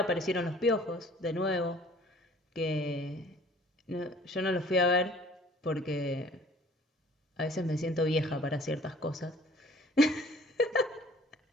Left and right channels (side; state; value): both; normal; correlation 0.53